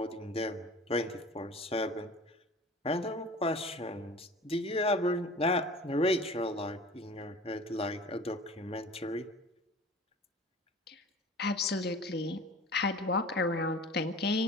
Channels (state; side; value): normal; both; correlation 0.41